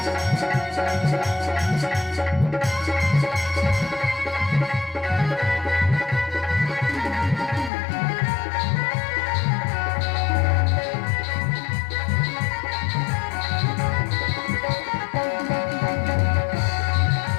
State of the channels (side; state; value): right; drops out; at 7.7 s